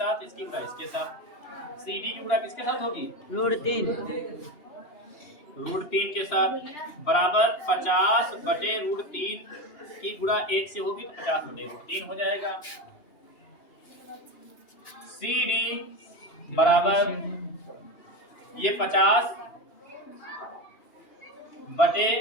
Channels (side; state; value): right; late; 2.8 ms